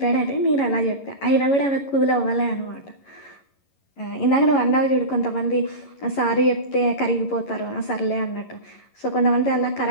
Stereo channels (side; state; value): right; late; 11 ms